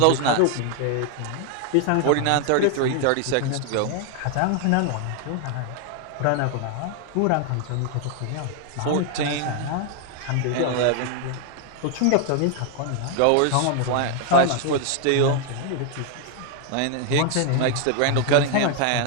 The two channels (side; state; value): both; different; correlation 0.00